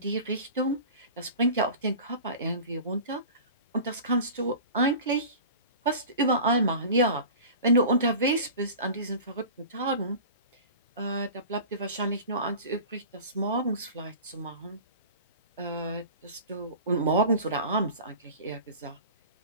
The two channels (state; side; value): inverted; both; correlation -0.37